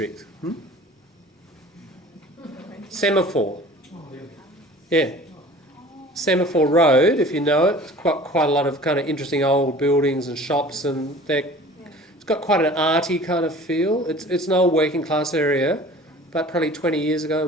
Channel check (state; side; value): normal; both; correlation 0.45